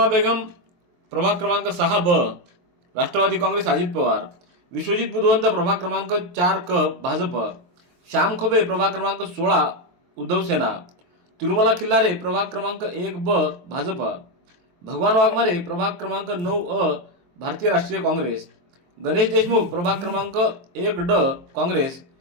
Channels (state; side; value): late; left; 23 ms